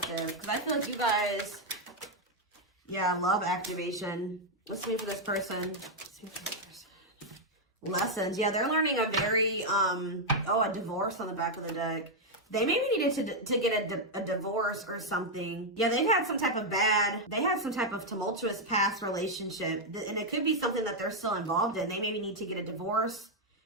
Because I feel like you guys, yeah, love activation. Let's see for this person. Let's see for this person. lessons. Yeah, they're learning a very, a divorce on the back of the deck. They maybe needed to get a divorce or something. Yeah, they had some type of tumultuous past relationship. And it could be something that they're still involved in. They maybe need to get a divorce,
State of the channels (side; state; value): both; normal; correlation 0.00